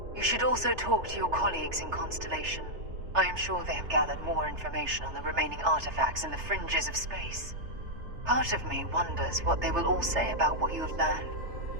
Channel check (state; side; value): late; left; 3.3 ms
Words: You should also talk to your colleagues in Constellation. I am sure they have gathered more information on the remaining artifacts in the fringes of space. Part of me wonders what they will all say about what you have learned.